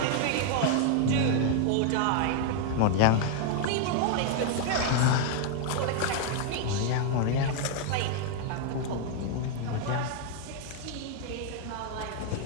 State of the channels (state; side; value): different; both; correlation 0.00